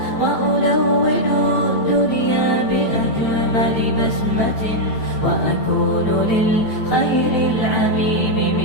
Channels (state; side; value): late; right; 9.0 ms